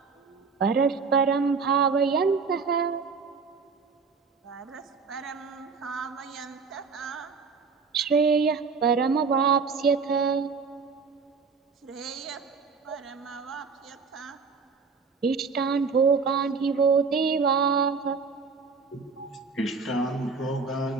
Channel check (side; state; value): left; quieter; 5.1 dB